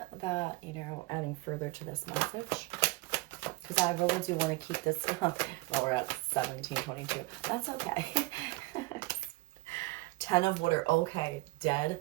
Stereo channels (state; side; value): quieter; left; 21.8 dB